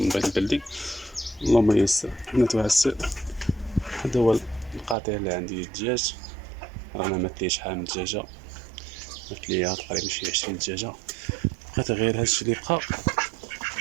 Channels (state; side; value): drops out; left; at 5.0 s